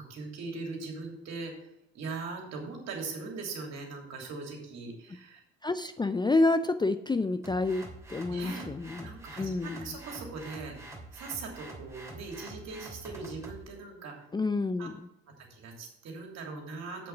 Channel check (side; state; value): both; normal; correlation 0.74